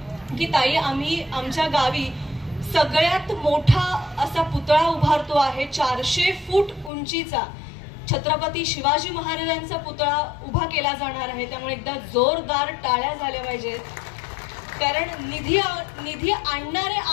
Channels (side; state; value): right; drops out; at 6.9 s